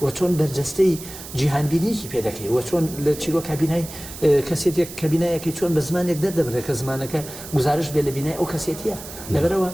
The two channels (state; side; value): noise; right; hiss, 13 dB below the sound